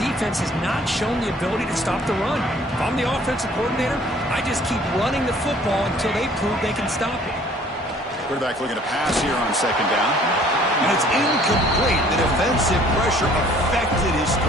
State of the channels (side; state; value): both; normal; correlation 0.55